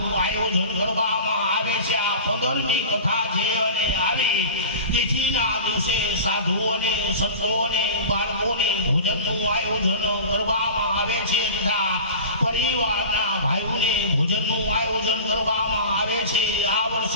આયોજન કરવામાં આવે છે. આ 15મી કથા છે અને આવી તિથિના દિવસે સાધુઓને સંતોને બાળકોને ભોજનનું આયોજન કરવામાં આવે છે તથા પરિવારના ભાઈઓને ભોજનનું આયોજન કરવામાં આવે છે. આ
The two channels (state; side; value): inverted; both; correlation -0.35